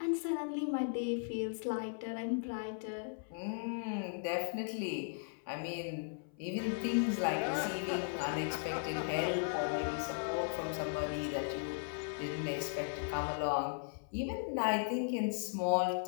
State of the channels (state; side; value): silent; right; 53 dB below the other